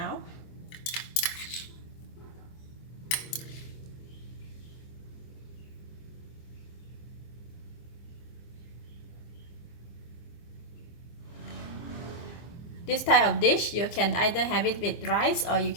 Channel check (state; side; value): late; right; 24 ms